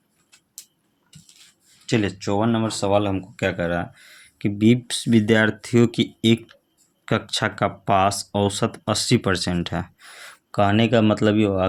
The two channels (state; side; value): identical; both; correlation 1.00